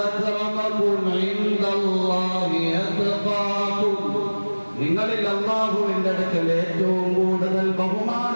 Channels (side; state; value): both; inverted; correlation -1.00